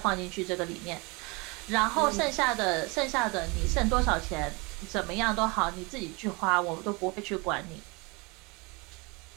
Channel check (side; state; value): left; quieter; 27.8 dB